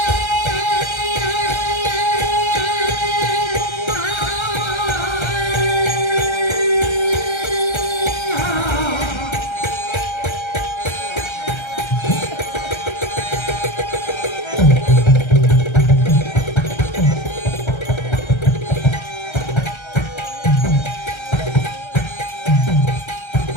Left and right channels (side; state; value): right; late; 1.3 ms